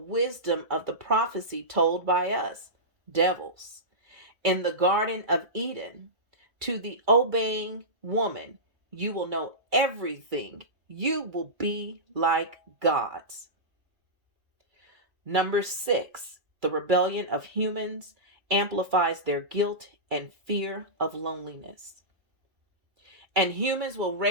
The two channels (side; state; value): left; late; 2.1 ms